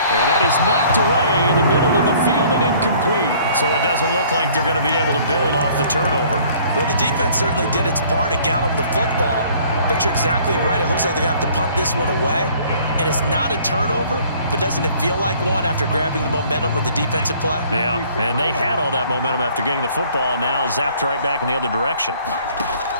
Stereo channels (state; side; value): inverted; both; correlation -0.56